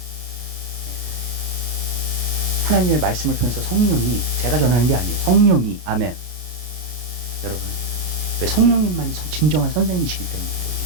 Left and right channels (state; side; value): late; left; 33 ms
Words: 하나님의 말씀을 통해서 성령이, 제가 전하는 게 아니에요. 성령이, 아멘. 여러분, 왜 성령님만이 진정한 선생님이시기 때문이에요.